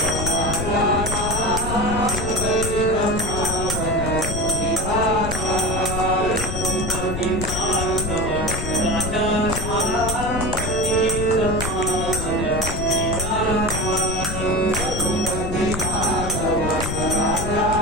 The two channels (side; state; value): left; noise; rumble, 4 dB below the sound